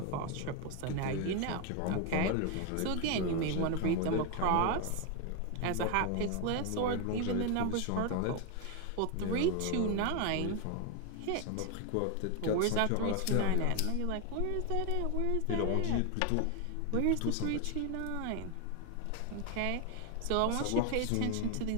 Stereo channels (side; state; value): both; different; correlation 0.01